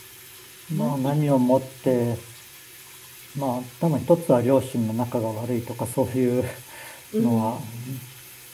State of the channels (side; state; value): both; identical; correlation 1.00